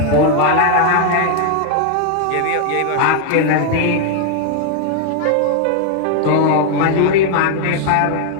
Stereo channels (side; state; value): both; different; correlation 0.00